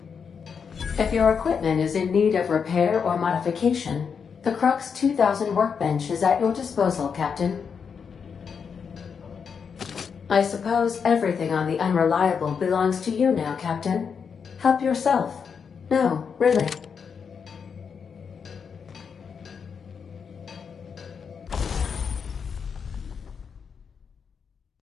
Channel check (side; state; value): right; quieter; 6.4 dB